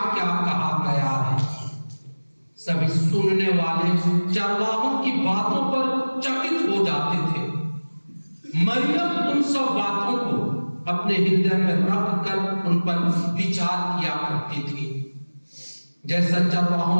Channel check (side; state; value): both; inverted; correlation -1.00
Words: क्या कहा गया है। सभी सुनने वाले चरवाहों की बातों पर चकित हो जाते थे। मरियम उन सब बातों को अपने हृदय में रख कर उन पर विचार किया करती थी। जैसा